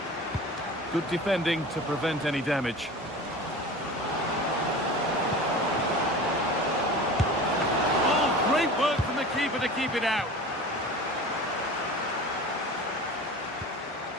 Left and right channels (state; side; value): normal; both; correlation 0.36